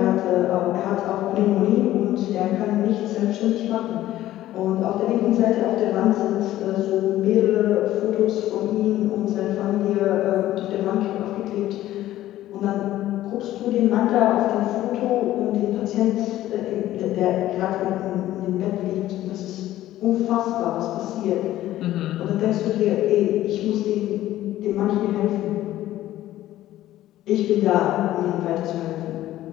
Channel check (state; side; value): quieter; right; 14.2 dB